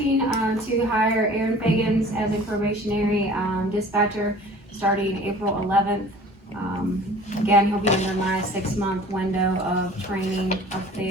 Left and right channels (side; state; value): both; normal; correlation 0.47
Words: to hire Aaron Fagans as a probationary, dispatcher starting April 11th. Again, he'll be under my 6-month window of training up